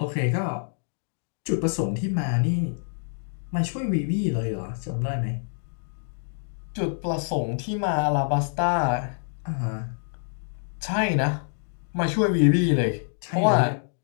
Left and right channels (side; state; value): right; silent; digital silence